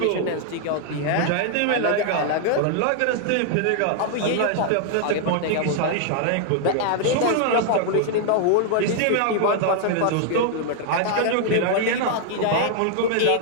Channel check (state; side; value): different; both; correlation 0.00